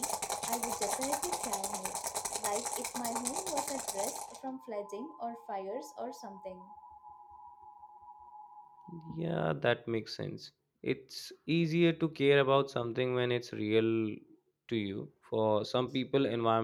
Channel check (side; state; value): both; identical; correlation 1.00